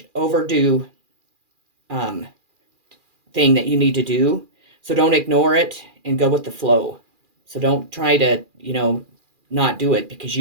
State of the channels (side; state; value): left; late; 2.4 ms